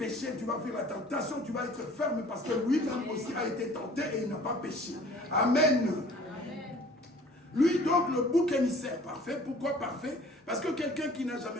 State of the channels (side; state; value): both; normal; correlation 0.51